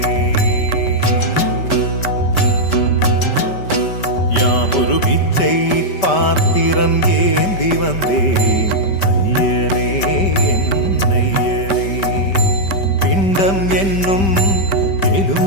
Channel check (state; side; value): late; right; 5.1 ms